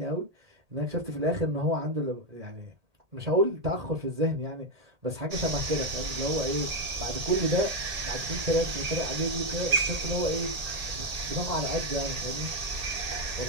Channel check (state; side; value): late; left; 1.8 ms